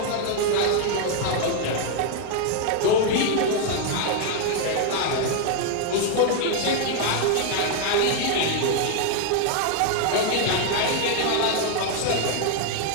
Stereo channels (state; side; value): different; both; correlation 0.00